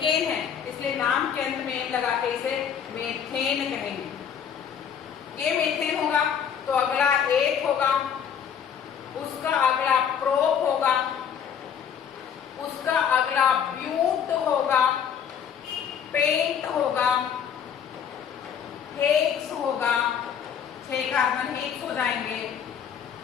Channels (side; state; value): right; quieter; 8.0 dB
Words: है इसलिए नाम के अंत में लगा के इसे मेथेन कहेंगे। ये मेथेन होगा तो अगला एक होगा, उसका अगला प्रोप होगा, उसका अगला ब्यूट होगा, पेंट होगा, हेक्स होगा। 6 कार्बन हेक्स हो जाएंगे।